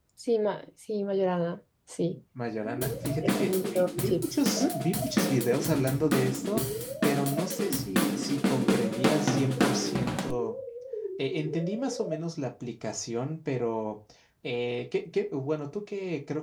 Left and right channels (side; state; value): both; identical; correlation 1.00